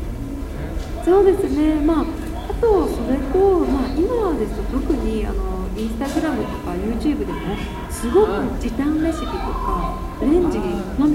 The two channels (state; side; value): identical; both; correlation 1.00